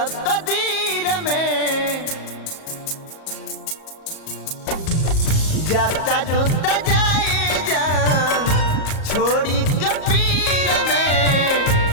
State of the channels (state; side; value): late; right; 38 ms